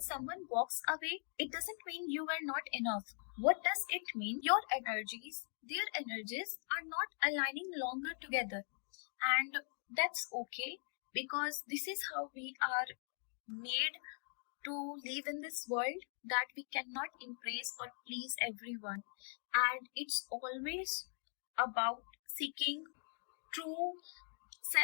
someone walks away, it doesn't mean you were not enough. What does it mean? Your energies, their energies are not aligning longer together. And that's okay, because this is how we are made to live in this world, that we cannot impress or please everyone. And it's always about seeking true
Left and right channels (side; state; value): right; silent; 50 dB below the other